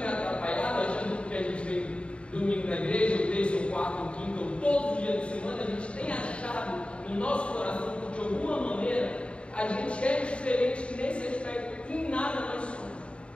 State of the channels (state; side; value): late; right; 0.058 ms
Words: atrapalhado, achando que a gente vem domingo na igreja, ou terça, ou quarta, ou quinta, ou todos os dias da semana, a gente tem achado no nosso coração que de alguma maneira a gente é diferente nesse aspecto, em nada nós somos.